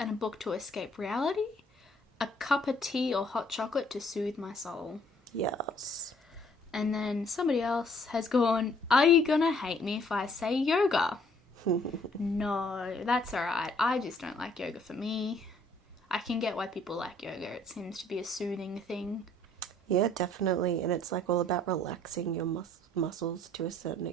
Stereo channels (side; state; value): both; normal; correlation 0.62